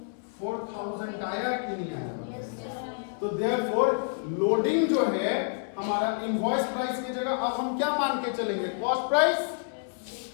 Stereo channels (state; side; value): silent; right; 59 dB below the other